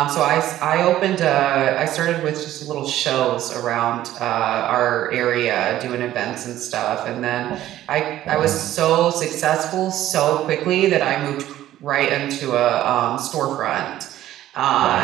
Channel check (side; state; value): left; quieter; 13.5 dB